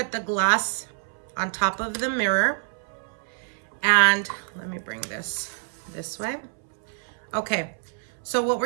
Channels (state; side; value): silent; left; 60 dB below the other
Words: the glass on top of the mirror. And let me bring this way. Okay. So what